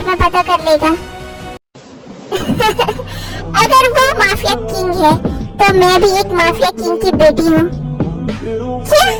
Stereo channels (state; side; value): identical; both; correlation 1.00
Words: में पता कर लेगा। अगर वो माफिया किंग है तो मैं भी एक माफिया किंग की बेटी हूँ। क्या?